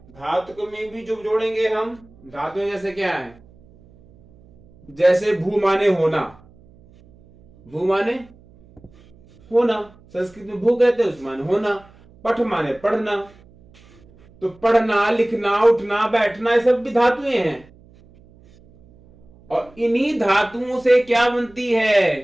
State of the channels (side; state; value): right; noise; hum, 27 dB below the sound